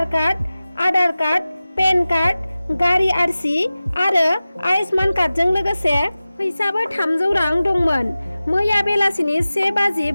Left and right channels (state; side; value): inverted; both; correlation -0.96